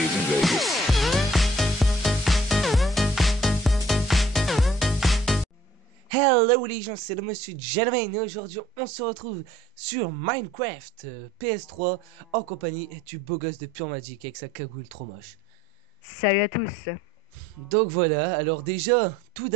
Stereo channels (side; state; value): both; normal; correlation 0.57